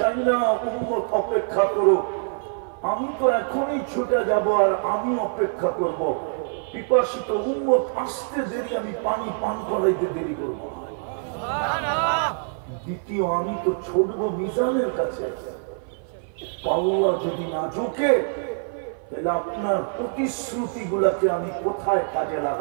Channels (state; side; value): silent; left; 55 dB below the other